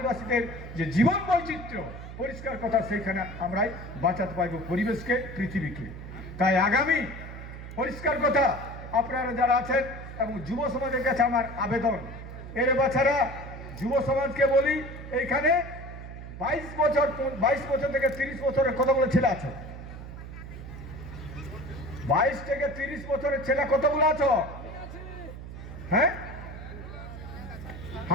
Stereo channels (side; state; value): right; noise; hum, 11 dB below the sound